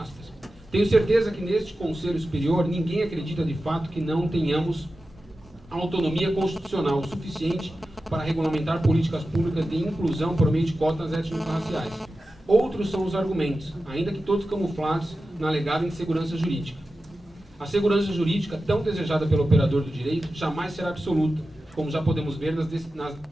Tenho certeza que neste Conselho Superior ninguém acredita de fato que não tenhamos autonomia constitucional o suficiente para regulamentar políticas públicas de inclusão por meio de cotas étnico-raciais. Outros são os argumentos, ainda que todos camuflados na alegada insegurança jurídica. A segurança jurídica, tão desejada pelo operador do direito, jamais será absoluta, como já podemos ver nas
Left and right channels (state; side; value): normal; both; correlation 0.93